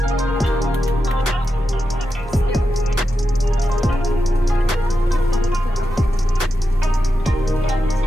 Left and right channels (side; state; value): both; normal; correlation 0.88